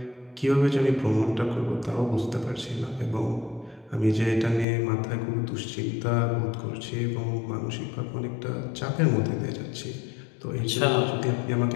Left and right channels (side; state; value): right; drops out; at 4.7 s